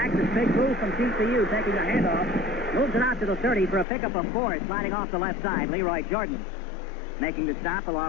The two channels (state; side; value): drops out; right; at 3.9 s